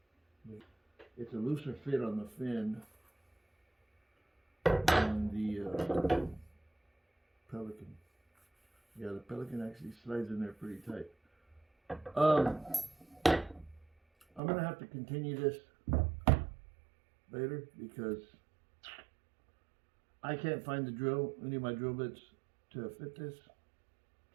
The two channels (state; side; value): drops out; left; at 14.4 s